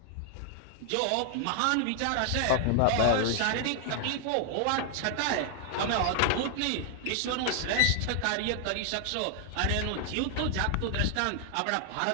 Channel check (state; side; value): different; both; correlation 0.00